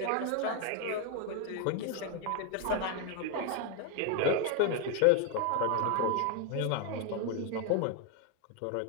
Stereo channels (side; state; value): both; different; correlation 0.01